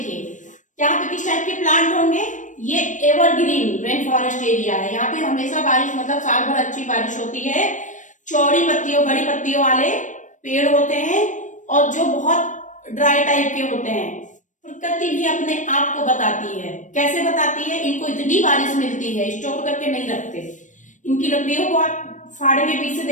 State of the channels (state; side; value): late; right; 0.37 ms